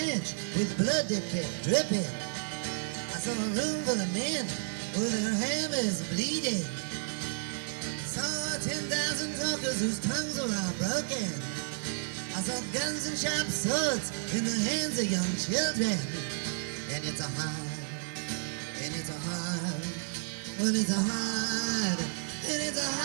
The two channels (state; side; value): silent; left; digital silence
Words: with blood that kept dripping. I saw a room full of men with their hammers bleeding. I saw 10,000 talkers whose tongues were all broken. I saw guns and sharp swords in the hands of young children. And it's a hard, and it's a hard, well it's a hard, and it's a